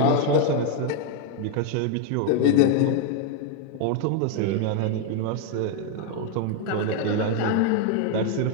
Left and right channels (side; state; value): both; different; correlation 0.01